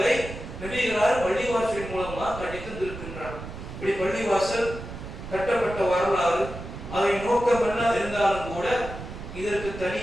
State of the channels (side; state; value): right; noise; rumble, 11 dB below the sound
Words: நபிகளார் பள்ளிவாசலின் மூலமாக கட்டித்திருக்கின்றார். இப்படி பள்ளிவாசல் கட்டப்பட்ட வரலாறு, அதை நோக்கம் என்ன இருந்தாலும் கூட இதற்கு